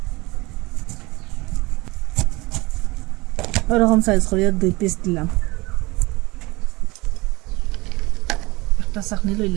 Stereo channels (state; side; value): quieter; left; 22.7 dB